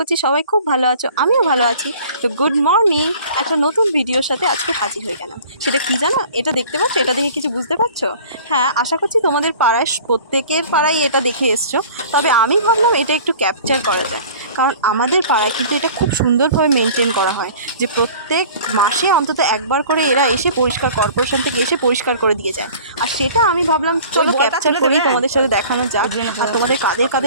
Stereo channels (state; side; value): inverted; both; correlation -0.46